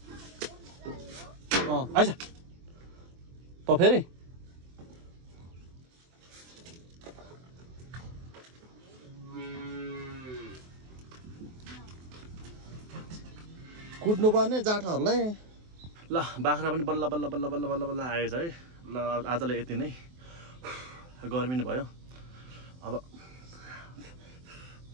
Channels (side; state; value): left; late; 23 ms